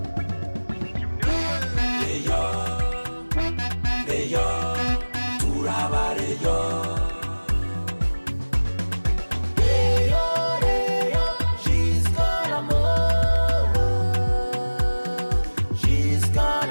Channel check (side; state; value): both; inverted; correlation -1.00